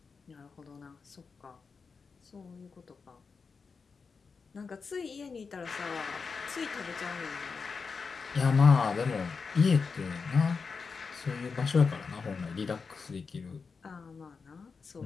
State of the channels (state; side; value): quieter; right; 5.1 dB